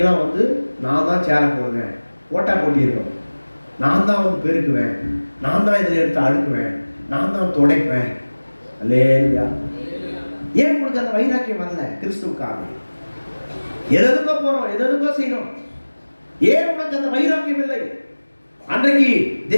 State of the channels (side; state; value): both; inverted; correlation -1.00